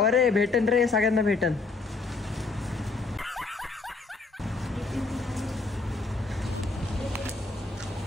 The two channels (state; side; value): quieter; right; 3.9 dB